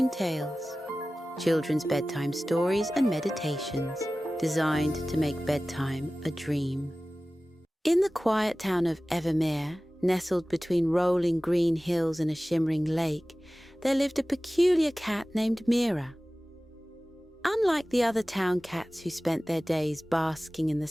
Tales, children's bedtime stories and meditations designed to make bedtime a dream. In the quiet town of Evermere, nestled between rolling green hills and a shimmering lake, there lived a peculiar cat named Mira. Unlike the other town cats who spent their days basking in the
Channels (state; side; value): normal; both; correlation 0.97